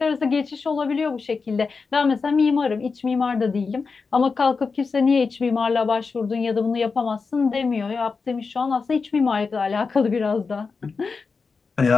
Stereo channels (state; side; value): quieter; right; 4.8 dB